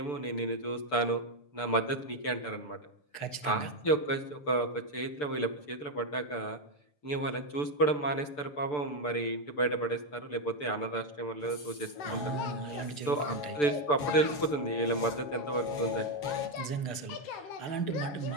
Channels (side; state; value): right; late; 6.8 ms